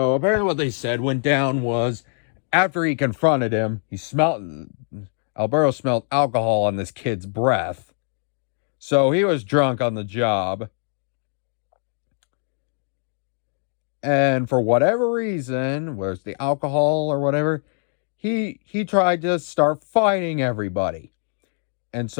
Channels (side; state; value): right; silent; digital silence